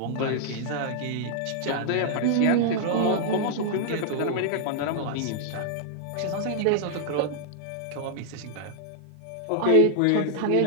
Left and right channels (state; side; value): different; both; correlation -0.01